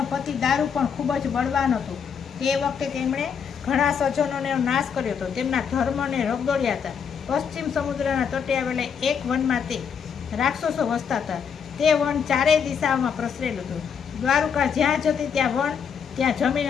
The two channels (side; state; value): right; quieter; 7.0 dB